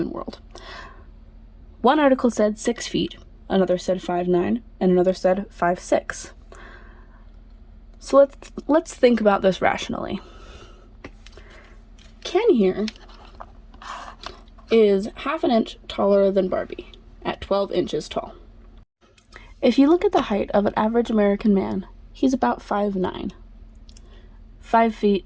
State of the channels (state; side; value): identical; both; correlation 1.00